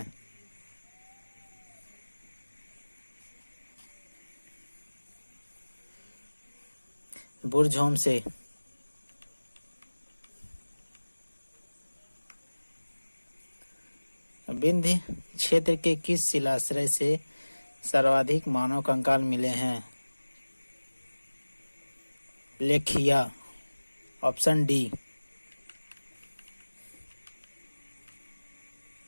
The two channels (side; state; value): both; inverted; correlation -1.00